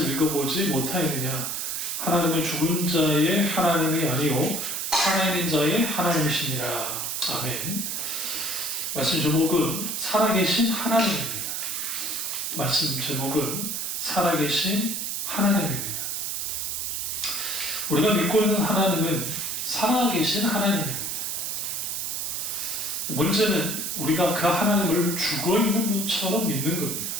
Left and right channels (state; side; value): noise; right; hiss, 2 dB below the sound